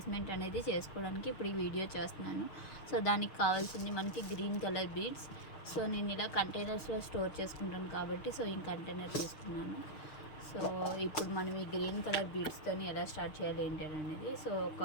అనేది చేసుకోవడానికి ఇప్పుడు ఈ వీడియో చేస్తున్నాను. సో దానికి కావాల్సింది మనకి గ్రీన్ కలర్ బీడ్స్. సో నేను ఇలా కంటైనర్స్లో స్టోర్ చేసుకుంటాను కాబట్టి సో ఈ కంటైనర్ తీసుకున్నాను. సో ఇప్పుడు మనం ఈ గ్రీన్ కలర్ బీడ్స్తో ఎలా స్టార్ట్ చేయాలి ఏంటి అనేది. సో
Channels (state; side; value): late; right; 6.4 ms